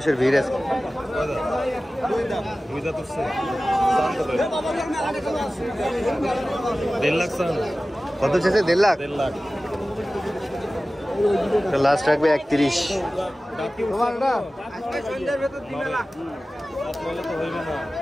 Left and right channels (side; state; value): both; normal; correlation 0.96